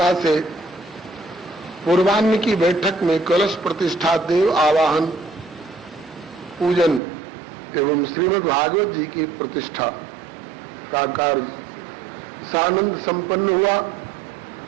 से पूर्वाह्न की बैठक में कलश प्रतिष्ठा, देव आवाहन, पूजन एवं श्रीमद् भागवत जी की प्रतिष्ठा का कार्य सानंद संपन्न हुआ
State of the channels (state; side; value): drops out; left; at 7.0 s